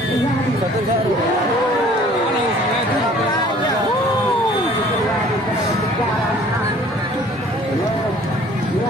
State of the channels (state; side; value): normal; both; correlation 0.53